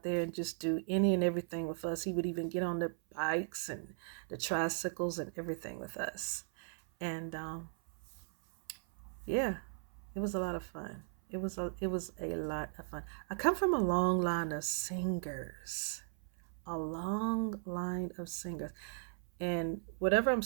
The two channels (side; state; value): left; silent; 53 dB below the other